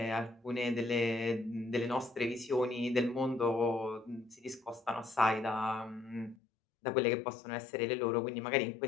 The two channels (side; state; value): right; drops out; at 6.4 s